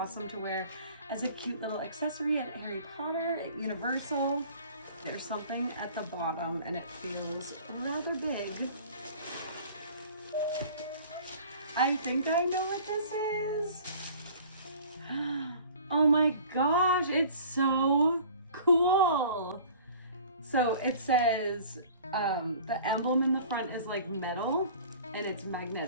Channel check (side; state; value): both; inverted; correlation -0.47